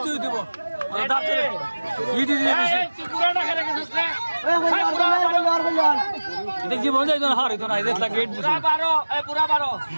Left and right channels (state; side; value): inverted; both; correlation -1.00